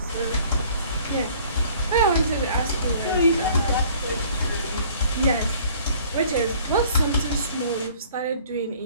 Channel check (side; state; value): both; inverted; correlation -0.54